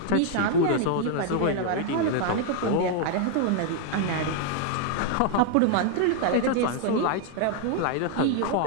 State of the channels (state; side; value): different; both; correlation 0.00